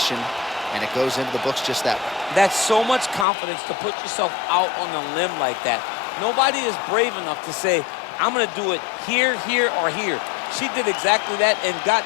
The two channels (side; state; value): right; drops out; at 3.2 s